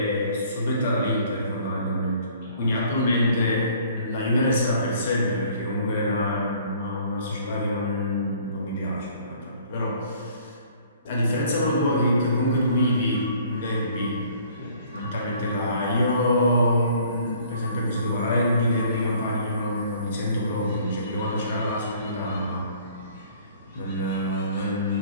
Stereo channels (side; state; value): both; inverted; correlation -0.56